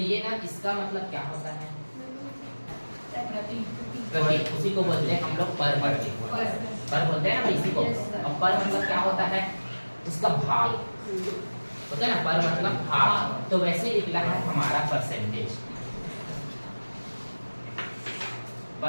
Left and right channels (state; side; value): inverted; both; correlation -1.00